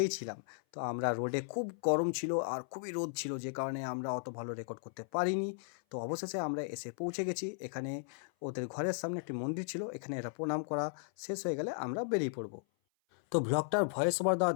ছিলাম। তো আমরা রোডে খুব গরম ছিল আর খুবই রোদ ছিল, যে কারণে আমরা অত ভালো রেকর্ড করতে পারিনি। তো অবশেষে আমরা এসে পৌঁছে গেছি এখানে। ওদের ঘরের সামনে একটি মন্দির ছিল, এখানে এরা প্রণাম করা শেষ হয়ে গেলে আমরা বেরিয়ে পড়বো। তো ব্লগটার ভয়েস ওভার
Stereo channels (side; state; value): right; silent; 54 dB below the other